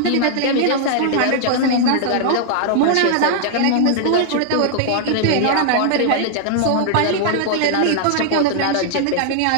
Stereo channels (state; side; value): different; both; correlation -0.01